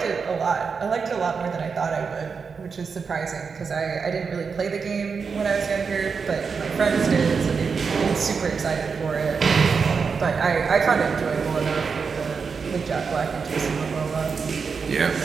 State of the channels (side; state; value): left; quieter; 5.5 dB